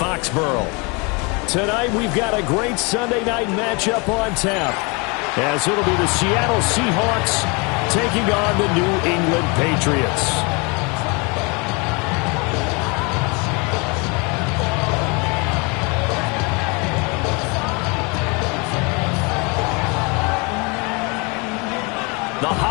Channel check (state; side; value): quieter; right; 30.1 dB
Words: Tonight, we've got a great Sunday night matchup on tap, as it'll be the Seattle Seahawks taking on the New England Patriots. The